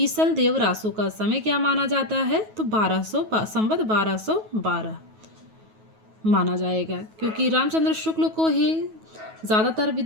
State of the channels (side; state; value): left; late; 9.3 ms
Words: देव रासो का समय क्या माना जाता है, तो 1212 माना जाएगा, क्योंकि रामचंद्र शुक्ल को ही ज़्यादातर